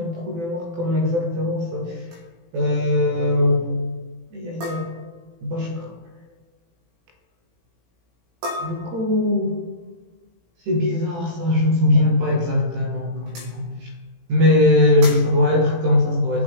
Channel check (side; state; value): left; late; 18 ms